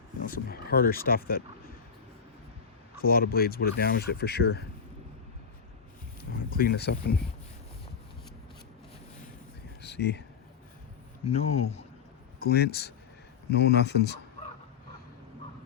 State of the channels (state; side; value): quieter; right; 6.6 dB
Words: know, some harder stuff that a lot of blades would have damaged it for sure. Clean this up and see, no glints, no nothings.